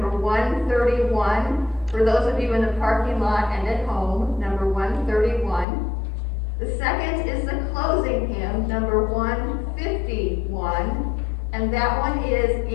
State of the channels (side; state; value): right; drops out; at 5.7 s